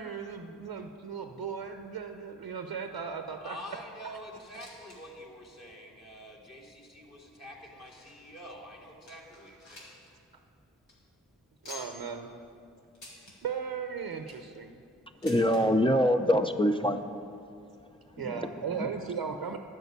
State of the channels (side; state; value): both; normal; correlation 0.58